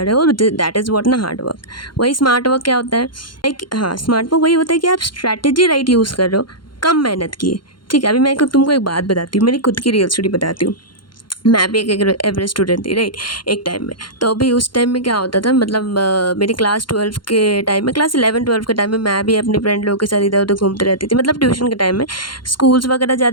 रहे हो। दैट इज़ व्हाट ना हार्ड वर्क। वही स्मार्ट वर्क क्या होता है? लाइक हाँ, स्मार्ट वर्क वही होता है कि आप स्ट्रैटेजी राइट यूज़ कर रहे हो, कम मेहनत किए। ठीक है, अभी मैं तुमको एक बात बताती हूँ, मेरी खुद की रियल स्टोरी बताती हूँ। मैं भी एक एवरेज स्टूडेंट थी, राइट, एक टाइम में। तो अभी उस टाइम में क्या होता था, मतलब मेरी क्लास 12 के टाइम में, क्लास 11-12 के टाइम में मैं भी अपने फ्रेंड लोगों के साथ इधर उधर घूमती रहती थी। मतलब ट्यूशन के टाइम में स्कूल्स वगैरह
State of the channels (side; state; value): right; late; 0.72 ms